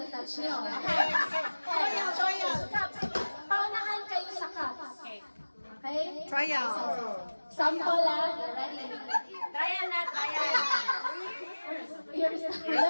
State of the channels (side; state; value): both; inverted; correlation -1.00